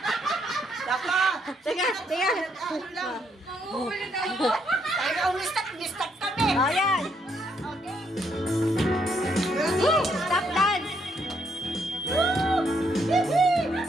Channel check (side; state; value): both; normal; correlation 0.74